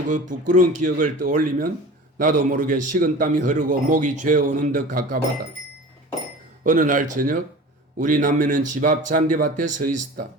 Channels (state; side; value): normal; both; correlation 0.38